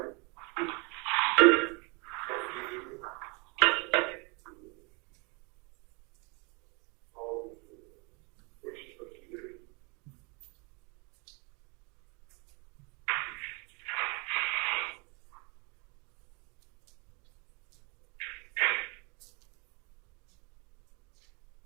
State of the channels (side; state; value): left; quieter; 30.9 dB